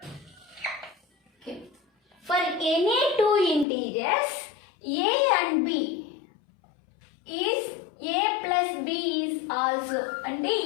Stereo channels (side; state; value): right; drops out; at 3.7 s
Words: For any two integers, A and B is A plus B is also. అంటే